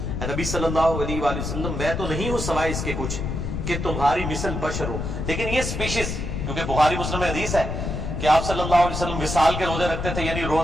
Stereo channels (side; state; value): left; noise; rumble, 3 dB below the sound